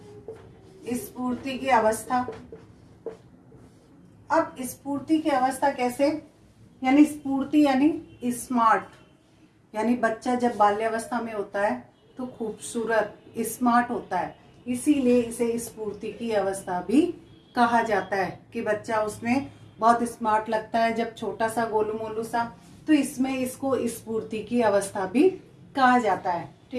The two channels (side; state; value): both; identical; correlation 1.00